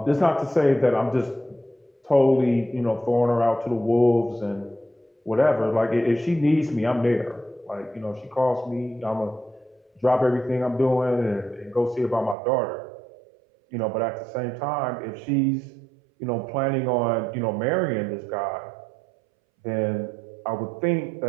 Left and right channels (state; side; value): drops out; left; at 12.4 s